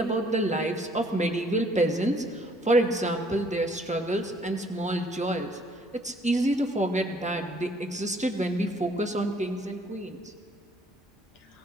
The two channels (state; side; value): normal; both; correlation 0.62